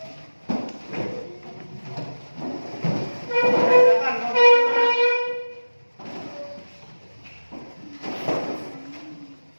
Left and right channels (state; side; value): inverted; both; correlation -1.00